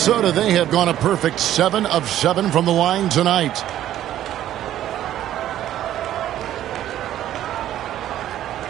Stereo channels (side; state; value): left; quieter; 12.3 dB